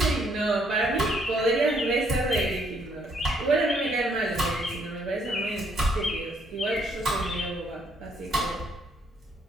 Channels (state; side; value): normal; both; correlation 0.69